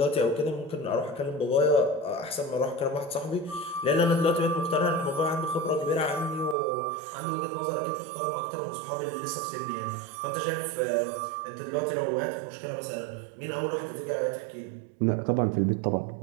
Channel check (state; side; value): drops out; left; at 6.6 s